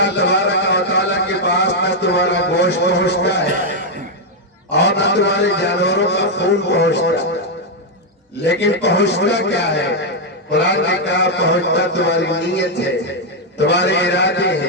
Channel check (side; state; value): both; normal; correlation 0.00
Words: تبارک و تعالیٰ کے پاس نہ تمہارا گوشت پہنچتا ہے اور نہ تمہارے جانوروں کا خون پہنچتا لیکن پہنچتا کیا ہے قرآن نے کہا پہنچتا تمہاری نیت ہے تمہارے ارادے